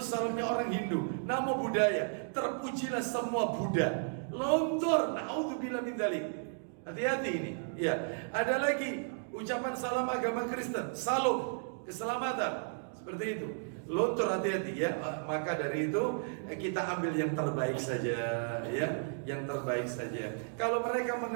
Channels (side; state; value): left; silent; digital silence